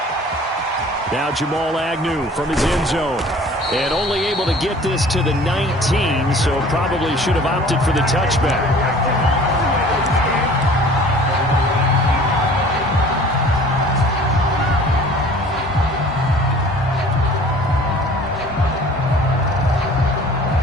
Now Jamal Agnew from his end zone. And only able to get this to the 19, so probably should have opted for the touchback.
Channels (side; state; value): both; normal; correlation 0.48